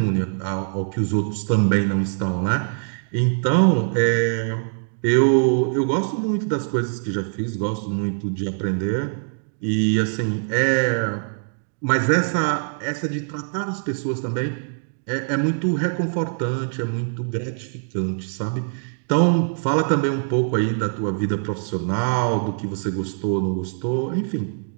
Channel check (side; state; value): left; silent; digital silence